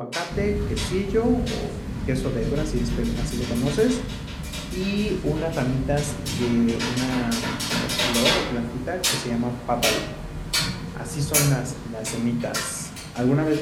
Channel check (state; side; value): identical; both; correlation 1.00